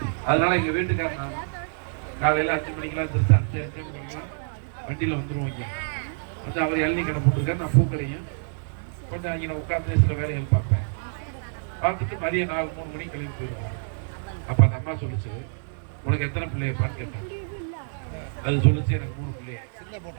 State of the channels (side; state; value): left; silent; digital silence